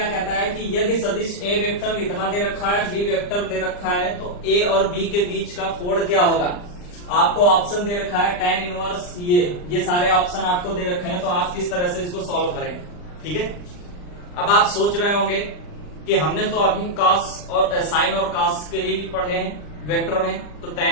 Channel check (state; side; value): late; right; 39 ms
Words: कहता है कि यदि सदिश A वेक्टर इतना दे रखा है, B वेक्टर दे रखा है, तो A और B के बीच का कोण क्या होगा। आपको ऑप्शन दे रखा है tan इनवर्स, ये सारे ऑप्शन आपको दे रखे हैं, तो आप किस तरह से इसको सॉल्व करेंगे। ठीक है, अब आप सोच रहे होंगे कि हमने तो अभी कॉस और साइन और कॉस के ही पढ़े हैं वेक्टर में, तो